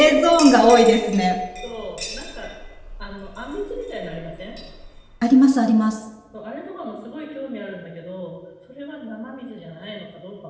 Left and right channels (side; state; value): both; identical; correlation 1.00